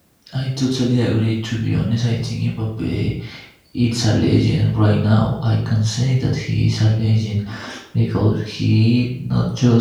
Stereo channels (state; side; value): identical; both; correlation 1.00